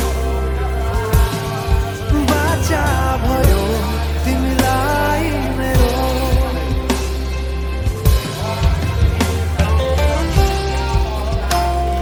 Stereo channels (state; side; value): identical; both; correlation 1.00